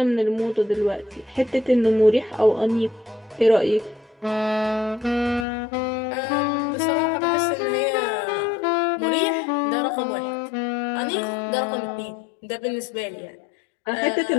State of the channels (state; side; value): drops out; right; at 5.5 s